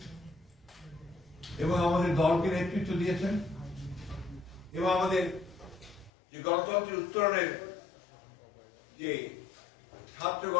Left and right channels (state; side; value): drops out; right; at 6.1 s